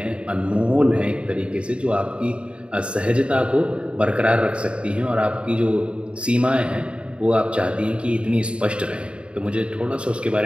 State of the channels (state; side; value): late; left; 0.057 ms